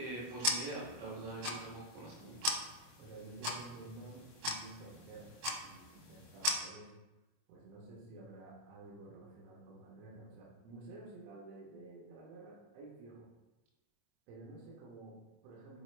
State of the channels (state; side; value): late; left; 25 ms